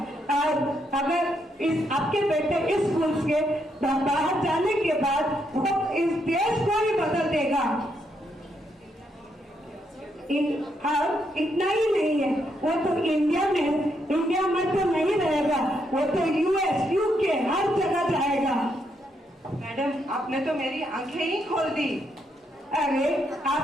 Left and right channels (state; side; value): normal; both; correlation 0.77